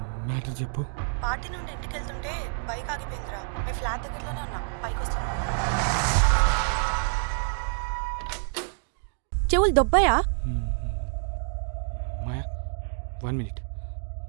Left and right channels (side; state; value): left; silent; digital silence